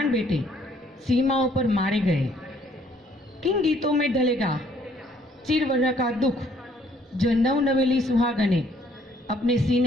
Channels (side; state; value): both; normal; correlation 0.64